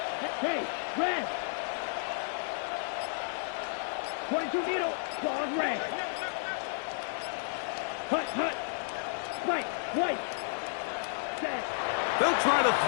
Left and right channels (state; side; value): silent; right; digital silence